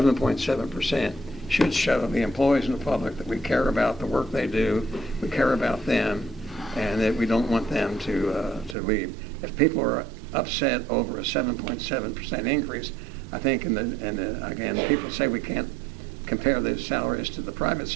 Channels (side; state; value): left; drops out; at 8.8 s